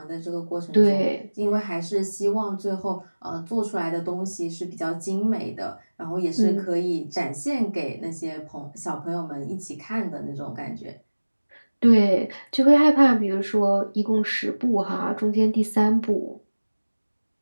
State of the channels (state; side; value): inverted; both; correlation -1.00